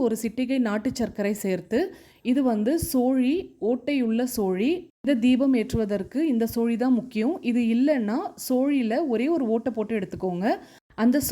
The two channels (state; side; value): identical; both; correlation 1.00